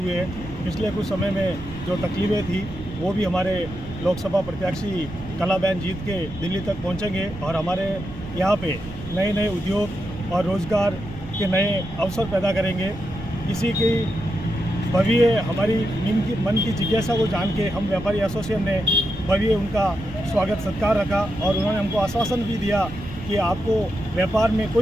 हैं। पिछले कुछ समय में जो तकलीफें थी वो भी हमारे लोकसभा प्रत्याशी कलाबेन जीत के दिल्ली तक पहुँचेंगे और हमारे यहाँ पे नए नए उद्योग और रोज़गार के नए अवसर पैदा करेंगे। इसी की भव्य हमारी मन की जिज्ञासा को जान के हम व्यापारी एसोसिएशन ने भव्य उनका स्वागत सत्कार रखा और उन्होंने हमको आश्वासन भी दिया कि आपको व्यापार में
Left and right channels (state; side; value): noise; right; rumble, 14 dB below the sound